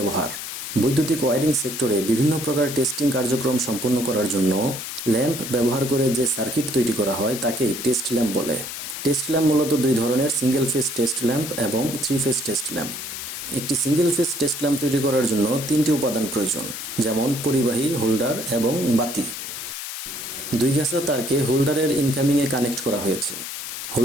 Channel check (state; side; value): noise; left; hiss, 7 dB below the sound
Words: বৈদ্যুতিক ওয়্যারিং সেক্টরে বিভিন্ন প্রকার টেস্টিং কার্যক্রম সম্পন্ন করার জন্য ল্যাম্প ব্যবহার করে যে সার্কিট তৈরি করা হয় তাকেই টেস্ট ল্যাম্প বলে। টেস্ট ল্যাম্প মূলত দুই ধরনের, সিঙ্গেল ফেজ টেস্ট ল্যাম্প এবং থ্রি ফেজ টেস্ট ল্যাম্প। একটি সিঙ্গেল ফেজ টেস্ট ল্যাম্প তৈরি করার জন্য তিনটি উপাদান প্রয়োজন, যেমন পরিবাহী, হোল্ডার এবং বাতি। দুই গাছা তারকে হোল্ডারের ইনকামিংয়ে কানেক্ট করা হয়েছে।